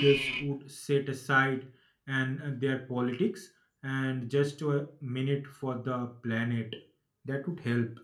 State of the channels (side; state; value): both; identical; correlation 1.00